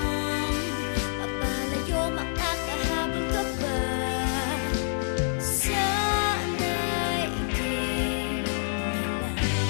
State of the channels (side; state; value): right; silent; digital silence